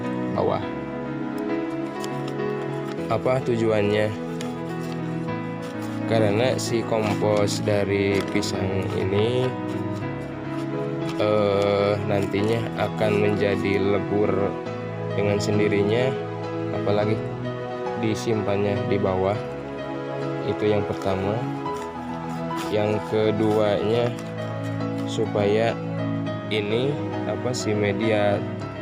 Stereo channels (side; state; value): both; identical; correlation 1.00